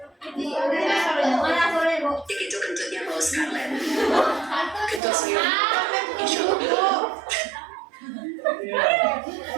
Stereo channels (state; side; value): drops out; left; at 5.0 s